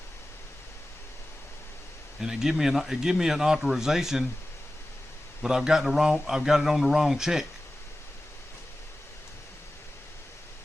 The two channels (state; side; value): normal; both; correlation 0.95